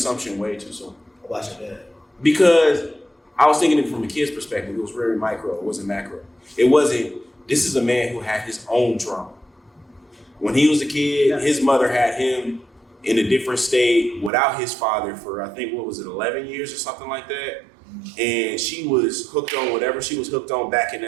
way too soon. About your dad. Because I was thinking it from a kid's perspective. It was very micro. It wasn't macro. It wasn't, this is a man who had his own trauma. When he was a kid, his mother had him in a different state without his father for, I think, 11 years or something like that. And she was hooked on whatever she was hooked on back in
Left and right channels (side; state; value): left; drops out; at 14.3 s